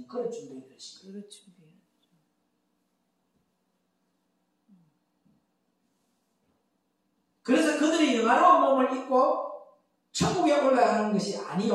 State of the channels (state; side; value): identical; both; correlation 1.00